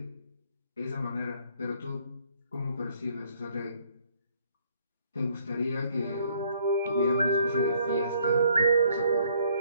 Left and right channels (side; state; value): both; inverted; correlation -0.64